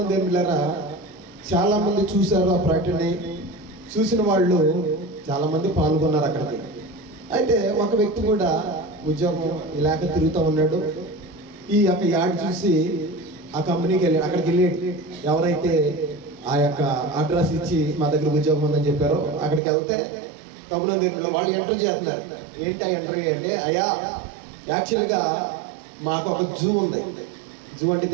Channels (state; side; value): drops out; left; at 19.6 s